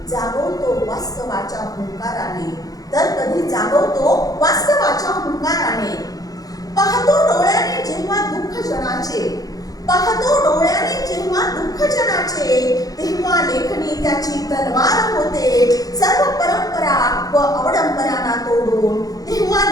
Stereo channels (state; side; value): late; right; 0.18 ms